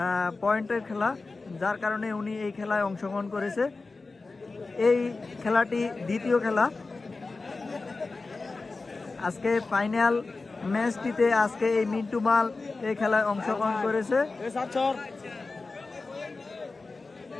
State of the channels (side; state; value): right; quieter; 3.8 dB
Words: পয়েন্টের খেলা, যার কারণে উনি এই খেলায় অংশগ্রহণ করেছে। এই খেলাটি দ্বিতীয় খেলা। আজকে ফাইনাল ম্যাচটিতে আজকে এই মিন্টু মাল এই খেলায় অংশগ্রহণ করেছে।